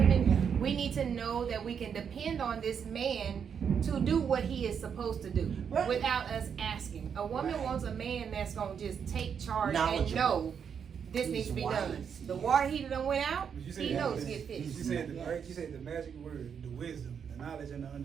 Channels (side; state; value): left; quieter; 7.3 dB